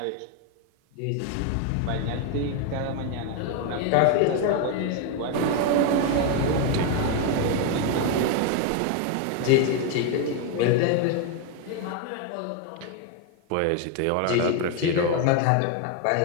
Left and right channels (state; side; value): different; both; correlation 0.01